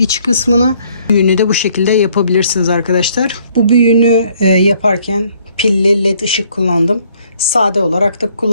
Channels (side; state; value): both; inverted; correlation -0.64